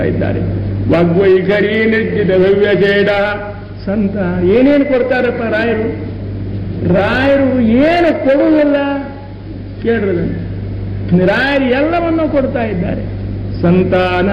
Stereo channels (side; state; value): both; identical; correlation 1.00